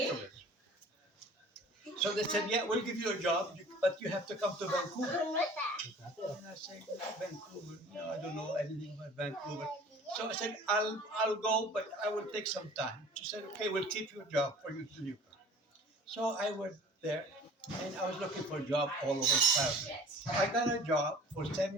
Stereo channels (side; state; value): both; normal; correlation 0.46